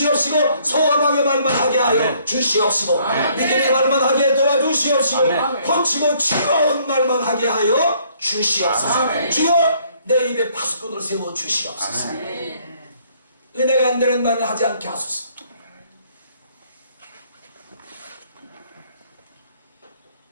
소망의 말만 하게 하여 아멘. 주시옵시고 아멘. 믿음의 말만 하게 도와주시옵시고 아멘. 고치고 치유하는 말만 하게 하여 주시옵소서. 아멘. 주여 내 입에 파수꾼을 세워 주시옵소서. 아멘. 은혜가 안 되는 말을 하지 않게 하소서.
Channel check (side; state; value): both; inverted; correlation -0.64